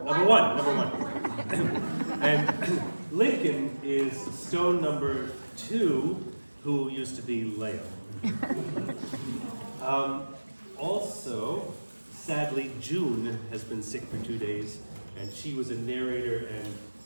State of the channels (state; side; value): inverted; both; correlation -1.00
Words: And Lincoln is stone number 2, who used to be Leo. Also, sadly, June has been sick for 2 days, and she was a narrator